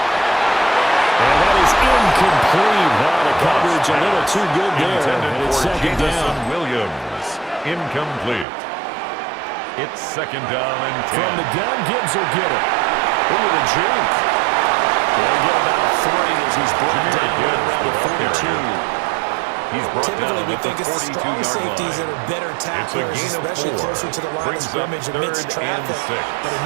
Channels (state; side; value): drops out; left; at 8.5 s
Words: And that is incomplete. Wow, the coverage a little too good there. And it's second down. Williams. Incomplete. It's second down and 10. From the gun, Gibbs will get it. Ooh, the juke. They'll get about 3 as he's brought down around the 42. He's brought down Typically, we at the think it's the strong 42-yard safeties line. that are better tacklers, It's a gain of especially 4. closer to the line of Brings up scrimmage amidst 3rd traffic. and 6. But in